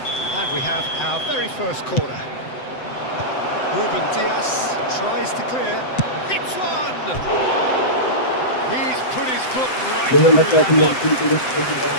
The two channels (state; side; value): late; right; 7.8 ms